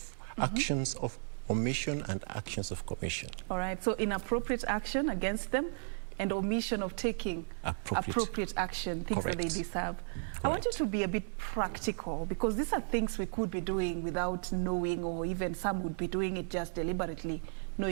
omission and actions of commission. All right, so inappropriate action against them and omission of taking appropriate action, things that they deserve. Correct. I want you to be a bit practical, because these are things we could be doing without knowing, or even some would be doing it just deliberately,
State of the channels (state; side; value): silent; left; 55 dB below the other